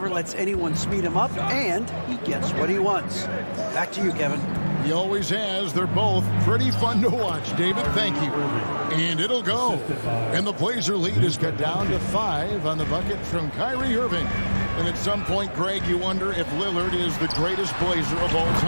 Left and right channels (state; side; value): inverted; both; correlation -1.00